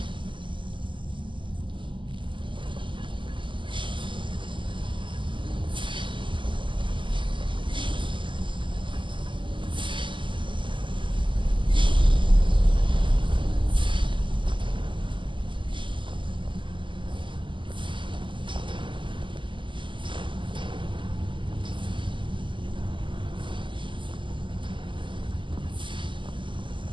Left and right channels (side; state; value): left; late; 0.24 ms